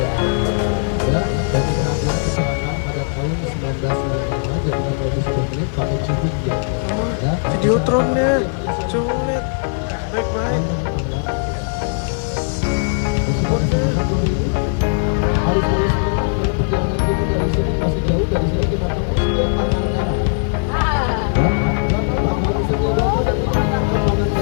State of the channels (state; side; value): silent; right; 62 dB below the other